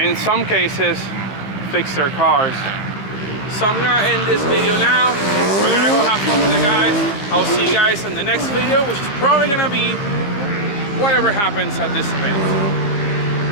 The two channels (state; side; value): late; right; 15 ms